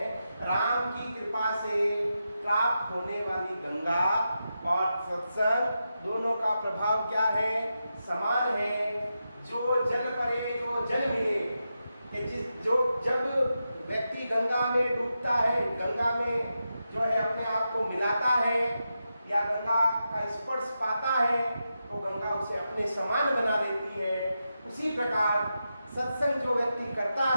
राम की कृपा से प्राप्त होने वाली गंगा और सत्संग दोनों का प्रभाव क्या है? समान है। जो जल परे, जो जल मिले, कि जब व्यक्ति गंगा में डूबता है, गंगा में जो है अपने आप को मिलाता है या गंगा का स्पर्श पाता है, तो गंगा उसे अपने समान बना देती है। उसी प्रकार सत्संग जो व्यक्ति करता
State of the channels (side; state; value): both; inverted; correlation -0.88